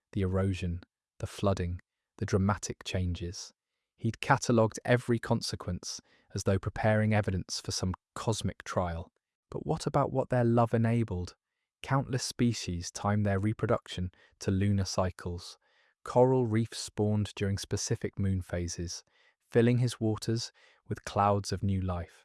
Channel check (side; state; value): both; identical; correlation 1.00